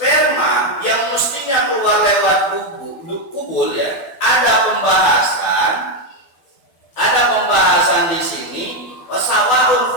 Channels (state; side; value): late; right; 12 ms